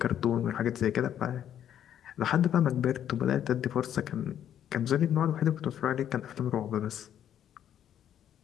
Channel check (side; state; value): right; quieter; 10.2 dB